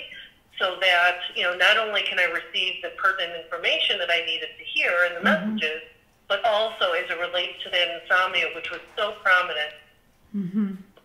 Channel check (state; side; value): identical; both; correlation 1.00